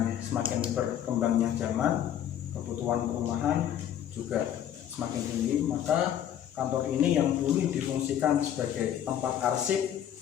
semakin berkembangnya zaman, kebutuhan perumahan juga semakin tinggi, maka kantor ini yang dulu difungsikan sebagai tempat arsip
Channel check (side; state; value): right; quieter; 10.4 dB